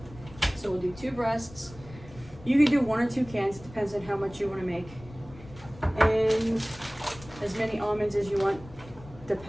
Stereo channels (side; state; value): left; noise; rumble, 18 dB below the sound